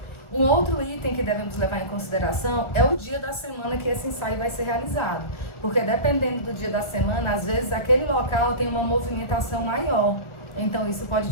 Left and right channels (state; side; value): late; right; 1.7 ms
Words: Um outro item que devemos levar em consideração é o dia da semana que esse ensaio vai ser realizado, porque dependendo do dia da semana, às vezes aquele local tem uma movimentação maior, então isso pode